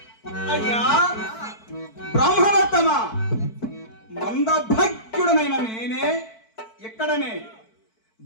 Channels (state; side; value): late; right; 4.5 ms